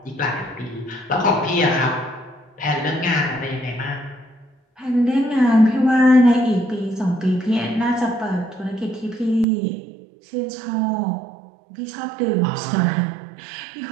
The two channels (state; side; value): drops out; left; at 9.5 s